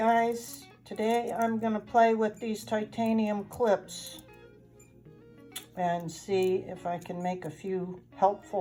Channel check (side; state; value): both; identical; correlation 1.00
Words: today I'm going to play with these titanium clips and see if I can make a few